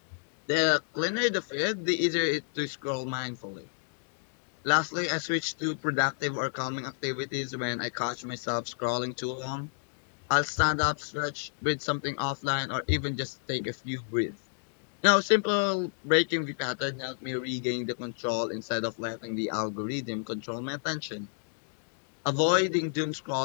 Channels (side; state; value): right; silent; digital silence